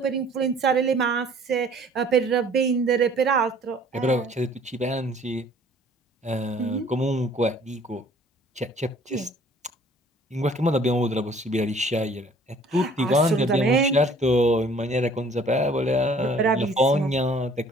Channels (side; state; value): both; normal; correlation 0.55